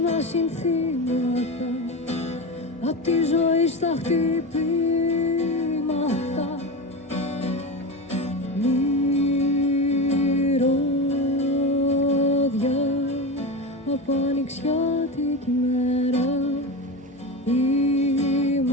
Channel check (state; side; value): normal; both; correlation 0.22